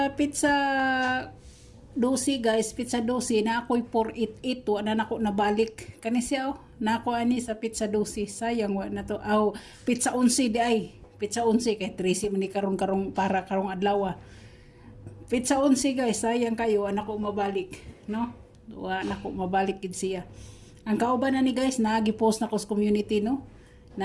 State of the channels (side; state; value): both; identical; correlation 1.00